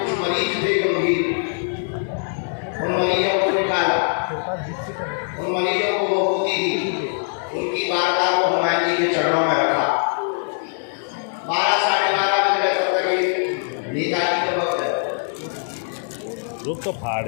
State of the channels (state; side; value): silent; right; 64 dB below the other